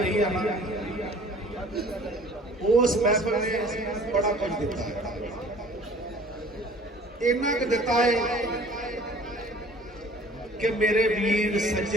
है ना, उस महफिल ने बड़ा कुछ दिता है। इन्ना क दिता है कि मेरे वीर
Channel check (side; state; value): both; normal; correlation 0.50